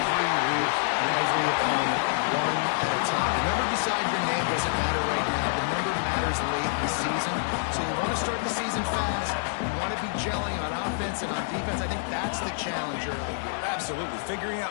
week and every opponent one at a time. The number beside your name doesn't matter right now. The number matters late in the season. So you want to start the season fast. You want to be gelling on offense and on defense. I think that's the challenge early. Absolutely. Figuring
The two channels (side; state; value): right; silent; digital silence